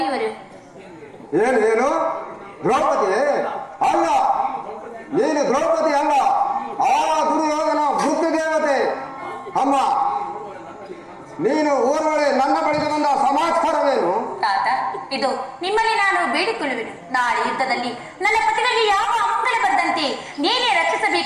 ಏನು ದ್ರೌಪದಿ? ಅಲ್ಲ, ನೀನು ದ್ರೌಪದಿ ಅಲ್ಲ, ಆ ದುರ್ಯೋಧನ ವೃದ್ಧ ದೇವತೆ. ಅಮ್ಮ, ನೀನು ಊರೊಳಗೆ ನನ್ನ ಬಳಿಗೆ ಬಂದ ಸಮಾಚಾರವೇನು? ತಾತ, ಇದು ನಿಮ್ಮಲ್ಲಿ ನಾನು ಬೇಡಿಕೊಳ್ಳುವೆನು. ನಾಳೆ ಯುದ್ಧದಲ್ಲಿ ನನ್ನ ಪತಿಗಳಿಗೆ ಯಾವ ಅಮಂಗಲ ಬಂದಂತೆ ನೀನೇ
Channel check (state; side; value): identical; both; correlation 1.00